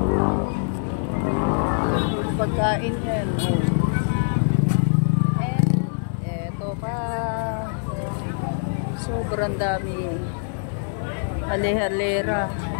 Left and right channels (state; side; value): silent; right; digital silence